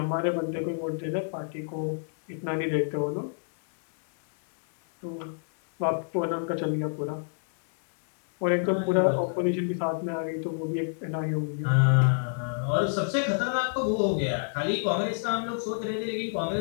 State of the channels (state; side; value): silent; right; digital silence